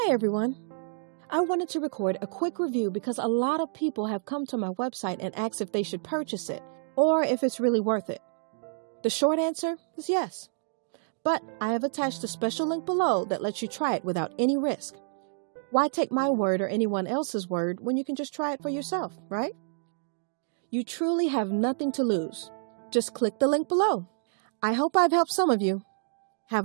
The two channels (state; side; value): silent; left; digital silence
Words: Hey everyone! I wanted to record a quick review because a lot of people have come to my website and asked if they should purchase it or if it's really worth it. The short answer is yes. But I have attached a special link below that lets you try it without any risk. Why take my word or anyone else's word when you can just try it for yourself, right? You truly have nothing to lose. Just click the link below. I hope I've helped some of you.